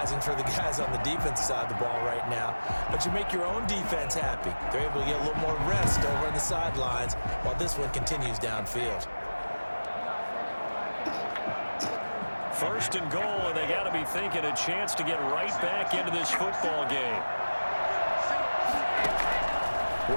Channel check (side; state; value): both; inverted; correlation -1.00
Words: for the guys on the defense side of the ball right now, but you make your own defense happy. They're able to get a little more rest over on the sidelines while this one continues downfield. 1st and goal, and they got to be thinking a chance to get right back into this football game.